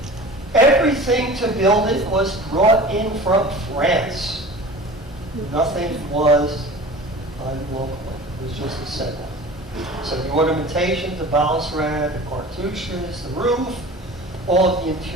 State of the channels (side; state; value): both; normal; correlation 0.39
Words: Everything to build it was brought in from France. Nothing was done locally. It was just assembled. So the ornamentation, the balustrade, the cartouches, the roof, all of the